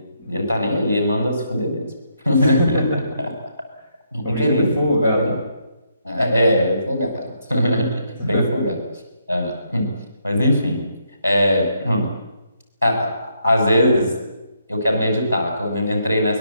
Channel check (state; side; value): inverted; both; correlation -0.76